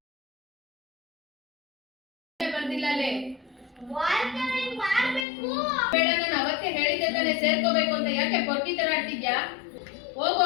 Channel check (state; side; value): drops out; right; at 5.2 s